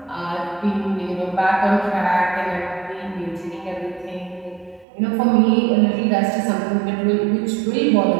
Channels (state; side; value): drops out; left; at 4.9 s